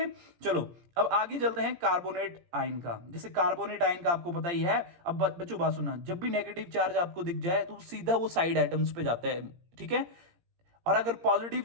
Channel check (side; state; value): left; late; 17 ms